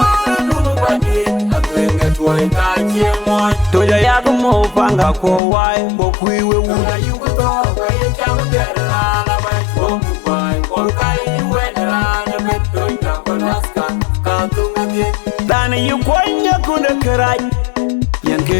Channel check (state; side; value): drops out; right; at 5.4 s